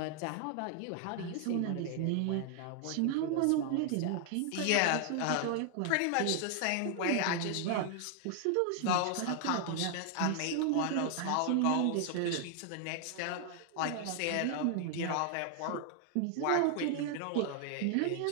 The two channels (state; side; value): different; both; correlation 0.00